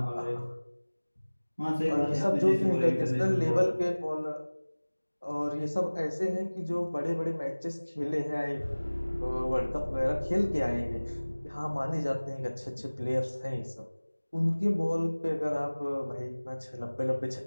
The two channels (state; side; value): inverted; both; correlation -1.00